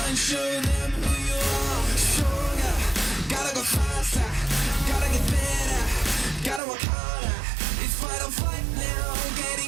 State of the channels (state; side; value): drops out; left; at 6.6 s